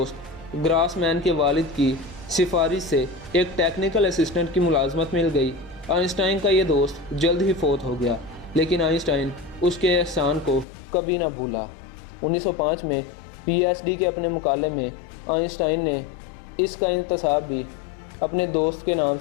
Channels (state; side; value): drops out; right; at 10.7 s